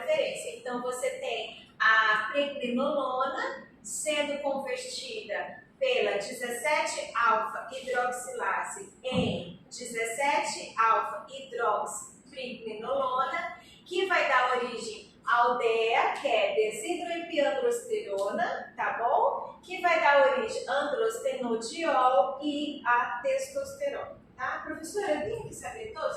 Então, você tem a pregnenolona sendo convertida pela 17-alfa-hidroxilase em 17-alfa-hidroxipregnenolona, que vai dar origem ao DEA, que é desidroepiandrosterona, tá bom? Que vai dar origem a androstenodiol e a testosterona, tá? Professora, eu tenho que saber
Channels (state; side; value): identical; both; correlation 1.00